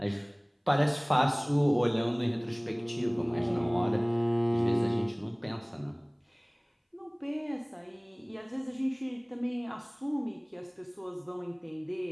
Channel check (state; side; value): identical; both; correlation 1.00